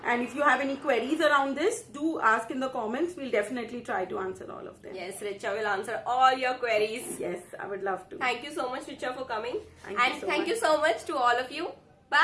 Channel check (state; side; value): identical; both; correlation 1.00